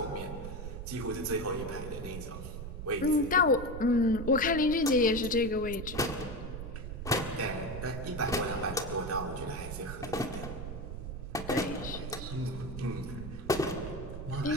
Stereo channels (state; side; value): noise; right; rumble, 7 dB below the sound